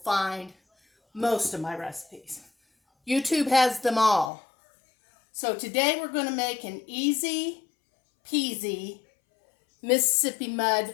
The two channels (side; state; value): right; drops out; at 4.3 s